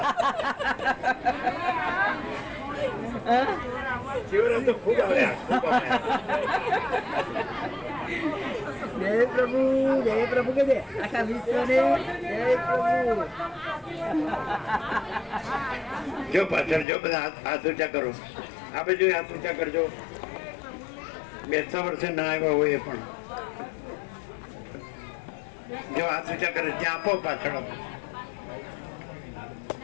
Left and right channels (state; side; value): drops out; right; at 16.9 s